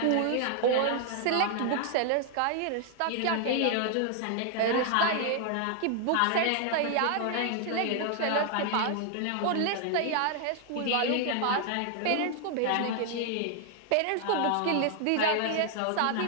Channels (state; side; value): different; both; correlation 0.00